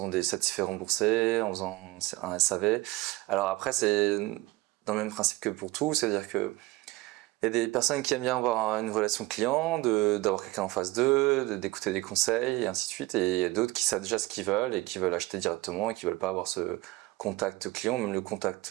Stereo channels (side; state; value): left; quieter; 20.1 dB